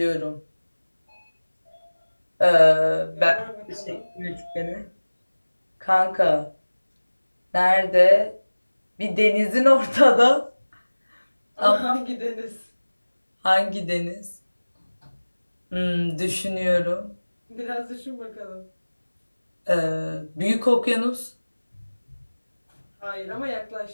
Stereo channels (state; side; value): inverted; both; correlation -1.00